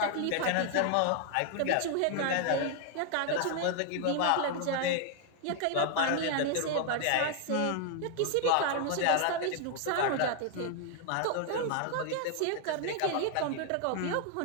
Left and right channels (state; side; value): different; both; correlation 0.00